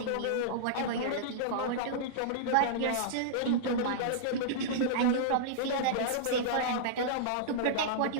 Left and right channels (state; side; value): different; both; correlation -0.02